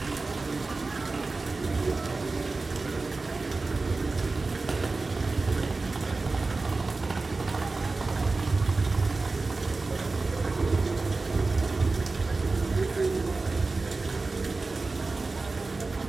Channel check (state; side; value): quieter; left; 3.7 dB